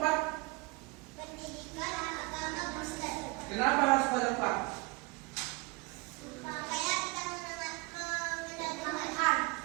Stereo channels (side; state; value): left; quieter; 26.7 dB